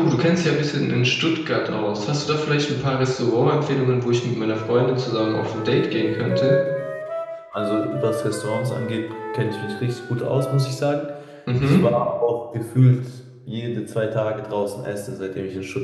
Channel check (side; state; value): both; identical; correlation 1.00